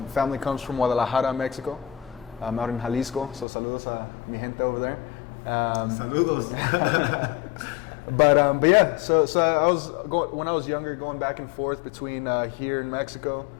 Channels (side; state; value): right; drops out; at 3.5 s